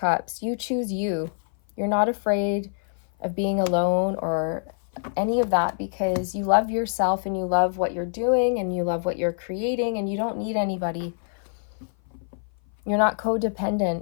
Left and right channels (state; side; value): silent; right; 57 dB below the other